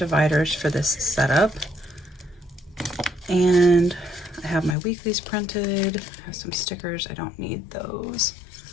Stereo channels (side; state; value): right; drops out; at 4.8 s